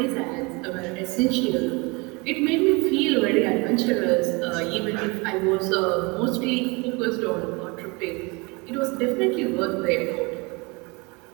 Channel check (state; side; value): quieter; left; 27.5 dB